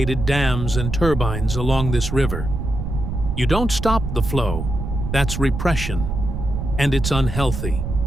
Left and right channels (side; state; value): right; noise; rumble, 4 dB below the sound